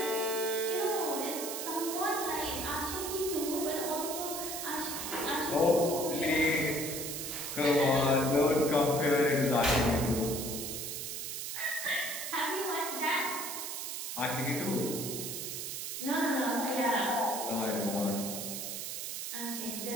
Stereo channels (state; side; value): noise; right; hiss, 5 dB below the sound